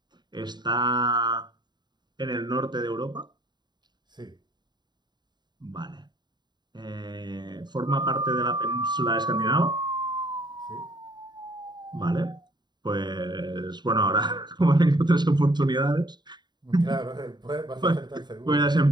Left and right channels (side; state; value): left; late; 0.21 ms